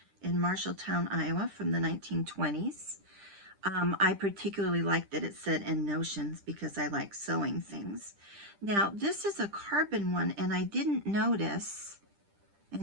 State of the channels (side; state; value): left; late; 10 ms